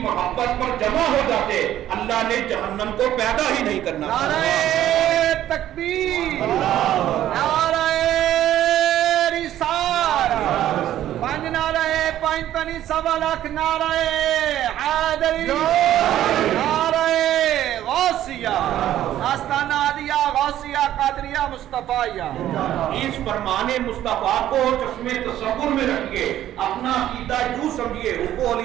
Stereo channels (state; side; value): quieter; left; 12.4 dB